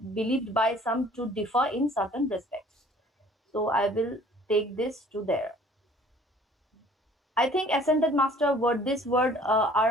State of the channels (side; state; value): both; normal; correlation 0.53